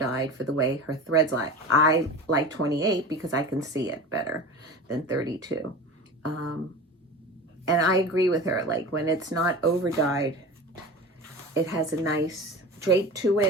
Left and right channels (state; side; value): normal; both; correlation 0.33